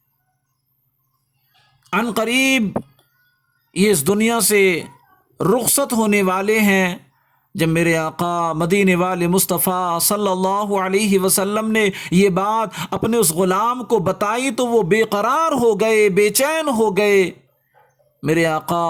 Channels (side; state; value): both; identical; correlation 1.00